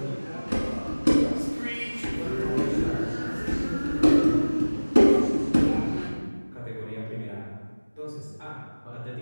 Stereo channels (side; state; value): both; inverted; correlation -1.00